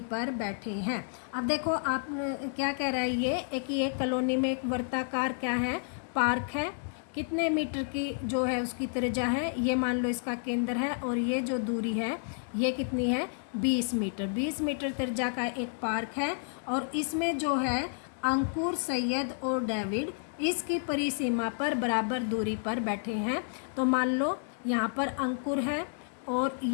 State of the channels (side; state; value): right; silent; digital silence